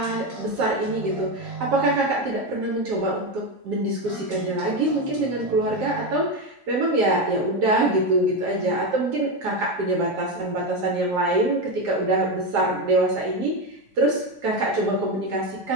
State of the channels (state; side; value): normal; both; correlation 0.12